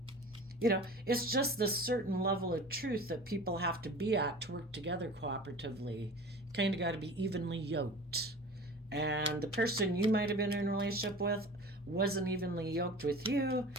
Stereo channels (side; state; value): both; normal; correlation 0.39